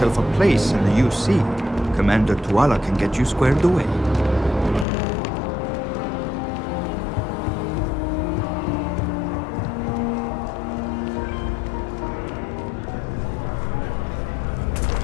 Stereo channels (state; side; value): drops out; right; at 4.9 s